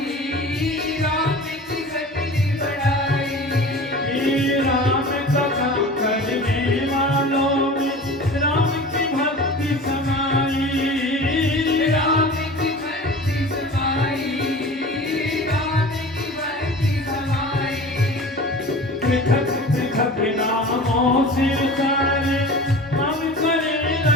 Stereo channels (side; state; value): both; normal; correlation 0.38